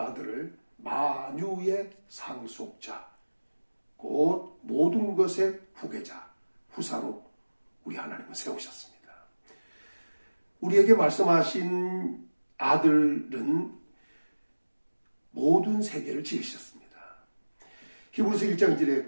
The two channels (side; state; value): both; inverted; correlation -1.00